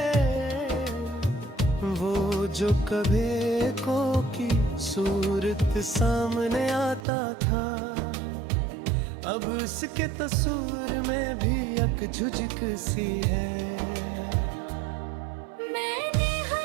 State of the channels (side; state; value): left; drops out; at 7.1 s